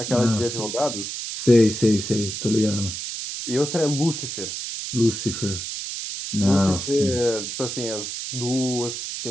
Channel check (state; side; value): noise; right; hiss, 6 dB below the sound